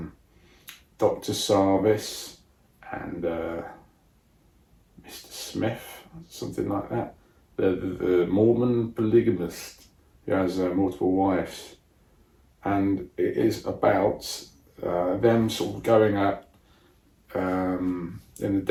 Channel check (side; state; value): both; identical; correlation 1.00